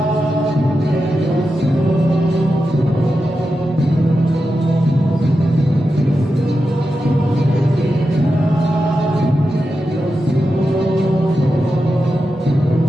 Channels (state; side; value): normal; both; correlation 0.90